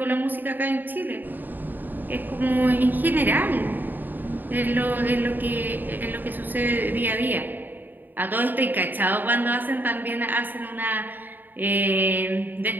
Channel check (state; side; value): late; left; 0.090 ms